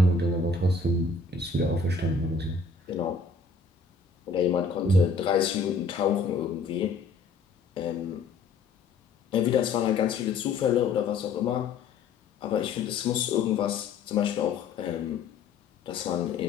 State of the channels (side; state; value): right; quieter; 4.4 dB